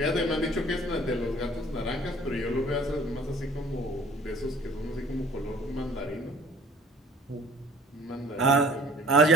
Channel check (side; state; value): both; normal; correlation 0.51